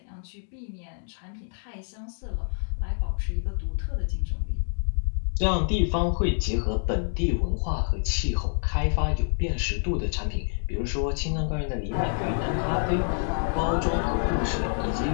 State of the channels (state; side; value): silent; right; 60 dB below the other